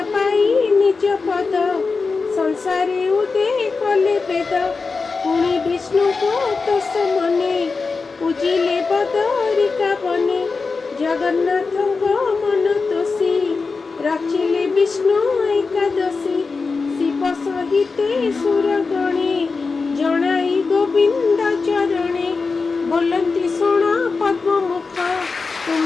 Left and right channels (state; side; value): quieter; right; 4.4 dB